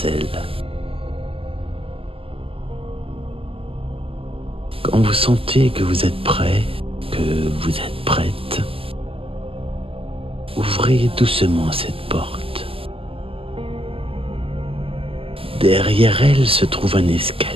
Quand vous sentez que vous êtes prêt, que vous êtes prête, ouvrez doucement cette porte. Derrière elle se trouve un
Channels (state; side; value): late; left; 0.26 ms